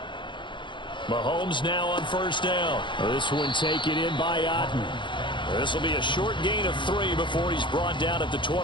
Mahomes now on first down. This one taken in by Otten. This will be a short gain of 3 before he's brought down at the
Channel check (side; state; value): right; late; 0.23 ms